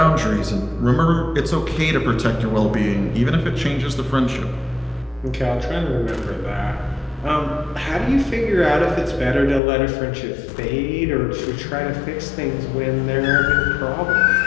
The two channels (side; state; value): right; drops out; at 9.6 s